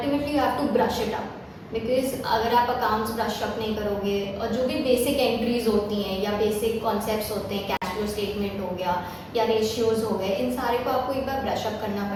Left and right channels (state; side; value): identical; both; correlation 1.00